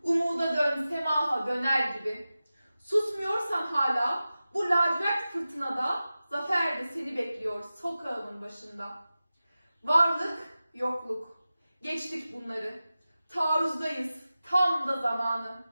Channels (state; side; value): inverted; both; correlation -0.95